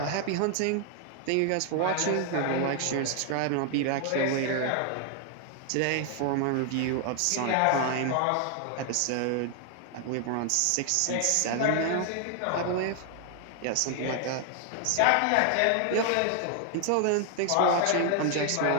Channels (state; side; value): different; both; correlation 0.00